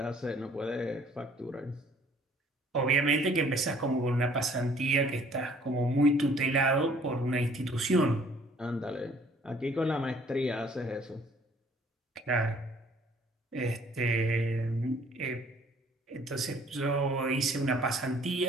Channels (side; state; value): both; normal; correlation 0.58